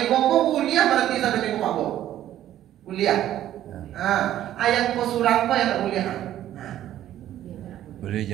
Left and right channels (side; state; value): left; quieter; 12.4 dB